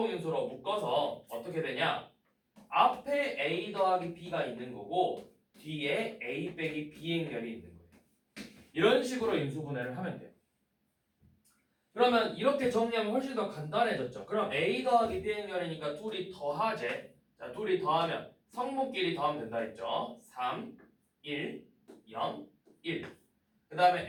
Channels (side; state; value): both; identical; correlation 1.00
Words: 묶어서 어떻게 되냐? 앞에 A 더하기 B가 있는 거고 뒤에 A 빼기 B 행렬이 있는 거예요. 이런 식으로 인수분해를 하면 돼요. 그러면 이렇게 정리하면 훨씬 더 간단해졌죠. 그럼 A 더하기 B 행렬이니까 둘이 더하재. 자, 둘이 더하면 성분끼리 더하면 된다 했죠. 3, 1, 0, 1. 그